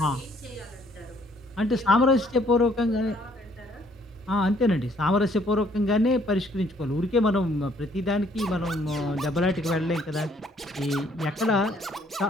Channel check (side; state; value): both; normal; correlation 0.64